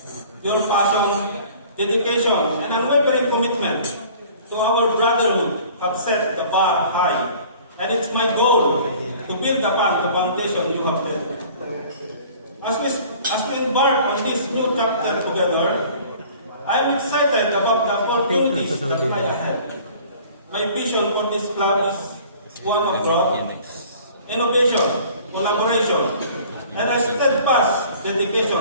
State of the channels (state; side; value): inverted; both; correlation -0.49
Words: Your passion, dedication, and unwavering commitment to our brotherhood have set the bar high, and it's my goal to build upon the foundation you have laid. As we embark on this new chapter together, I am excited about the opportunities that lie ahead. My vision for this club is one of growth, innovation, collaboration, and a steadfast